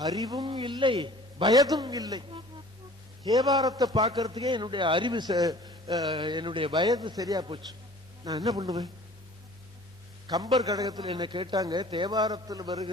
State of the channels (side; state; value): both; normal; correlation 0.48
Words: அறிவும் இல்லை, வயதும் இல்லை. தேவாரத்தை பார்க்கறதுக்கே என்னுடைய அறிவு என்னுடைய வயது சரியா போச்சு. நான் என்ன பண்ணுவேன்? கம்பர் கடகத்தில் என்ன கேட்டாங்க, தேவாரத்தில்